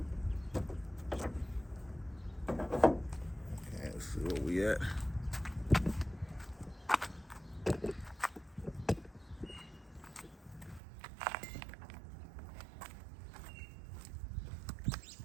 let's see where we at.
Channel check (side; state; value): left; drops out; at 10.8 s